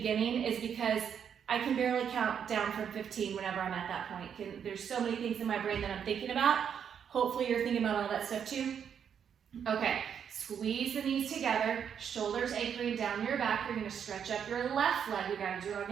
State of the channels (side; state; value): left; quieter; 8.0 dB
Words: is because I can barely count down from 15 whenever I'm at that point. There's so many things in my brain that I'm thinking about. Hopefully you're thinking about all that stuff too. Okay, squeeze the knees together, shoulders anchoring down your back. You're gonna stretch up your left leg. We gotta do it